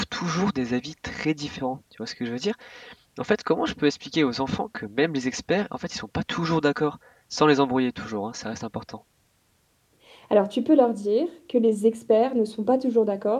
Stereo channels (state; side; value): identical; both; correlation 1.00